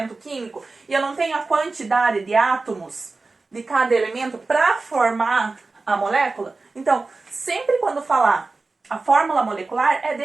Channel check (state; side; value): quieter; left; 3.7 dB